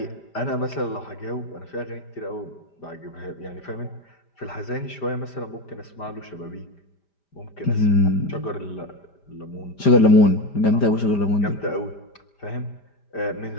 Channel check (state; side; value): late; right; 5.0 ms